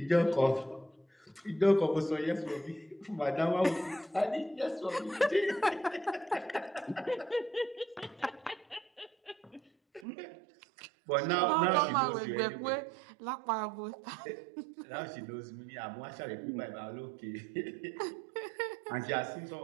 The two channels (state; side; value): drops out; left; at 10.1 s